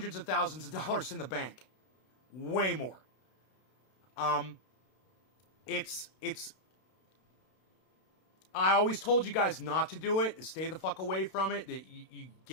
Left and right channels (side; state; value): right; late; 32 ms